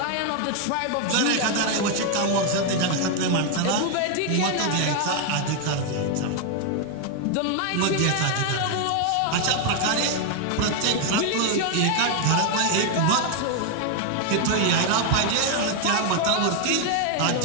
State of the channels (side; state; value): both; different; correlation 0.01